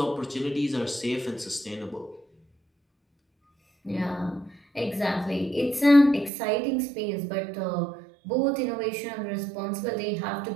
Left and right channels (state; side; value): drops out; left; at 6.3 s